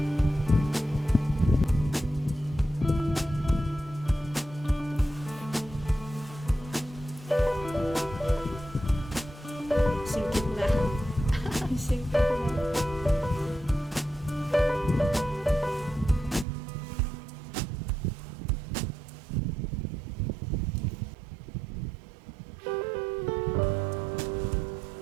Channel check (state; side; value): drops out; left; at 16.4 s